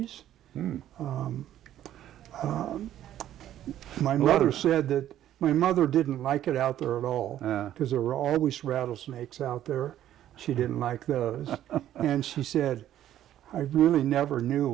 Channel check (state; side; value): quieter; left; 12.0 dB